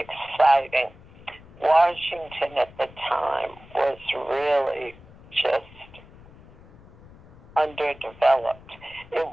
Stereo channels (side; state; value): left; noise; rumble, 22 dB below the sound